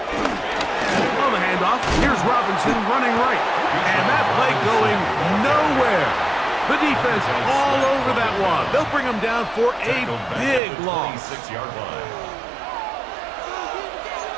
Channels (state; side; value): drops out; left; at 10.6 s